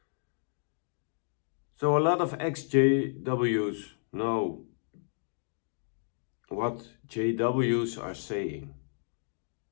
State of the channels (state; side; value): silent; right; digital silence